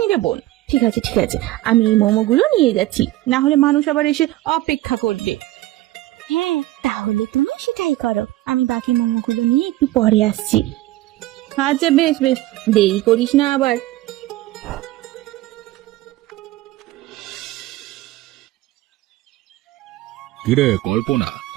রে বোন। ঠিক আছে ঠিক আছে, আমি এই মোমোগুলো নিয়ে যাচ্ছি, না হলে মানুষ আবার এসে অপেক্ষা করবে। হ্যাঁ, তাহলে তুমি সেটাই করো, আমি বাকি মোমোগুলো নিয়ে একটু পরে আসছি। আচ্ছা বেশ বেশ, দেরি করিস না আবার। কিরে কল্পনা,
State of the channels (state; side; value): quieter; left; 16.7 dB